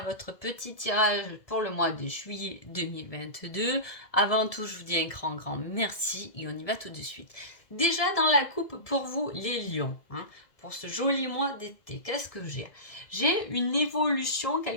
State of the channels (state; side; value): late; right; 2.0 ms